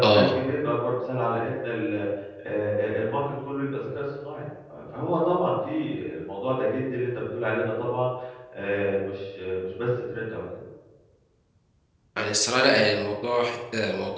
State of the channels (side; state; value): both; identical; correlation 1.00